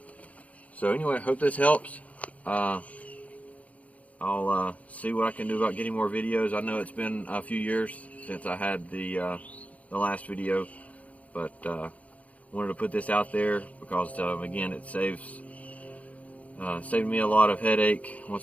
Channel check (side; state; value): right; late; 0.068 ms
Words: So anyway, I hope this helps. I'll see what I can do about getting more videos. I know it's been a few years since I had the last video, but wanted to put this out there because again, it saved me a lot of headache